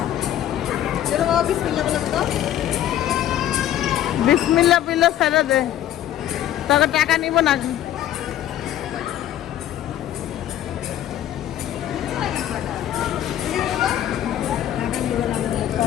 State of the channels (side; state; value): right; quieter; 11.9 dB